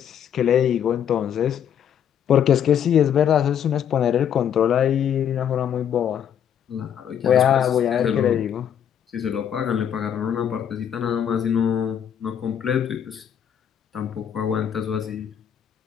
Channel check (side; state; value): right; quieter; 9.0 dB